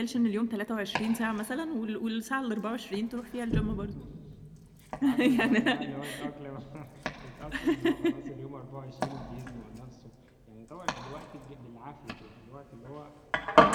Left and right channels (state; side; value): identical; both; correlation 1.00